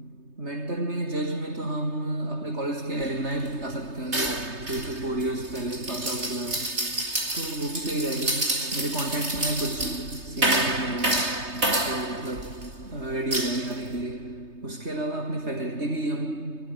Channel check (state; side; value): late; left; 3.3 ms